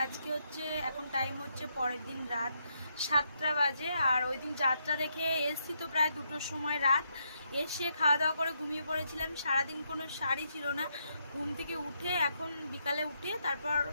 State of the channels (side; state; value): both; inverted; correlation -0.78